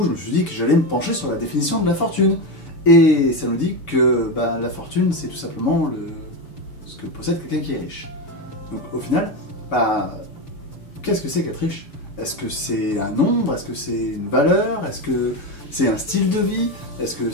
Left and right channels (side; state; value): right; late; 6.9 ms